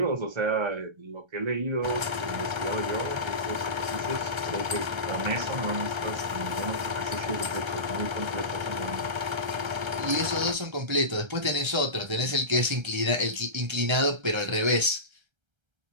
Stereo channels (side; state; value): left; late; 1.3 ms